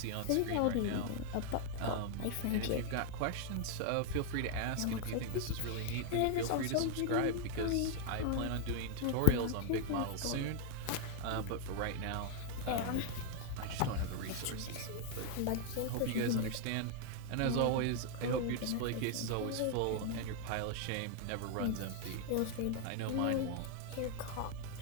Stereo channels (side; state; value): both; different; correlation 0.00